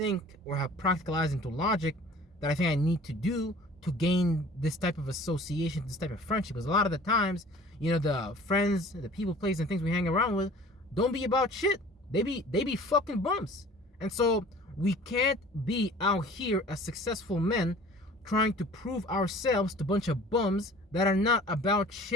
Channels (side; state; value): both; normal; correlation 0.47